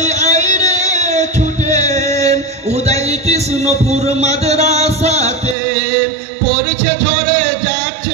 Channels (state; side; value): drops out; left; at 5.6 s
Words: আইরে ছুটে উদয় কৃষ্ণপুর মাদ্রাসাতে। পড়ছে ঝরে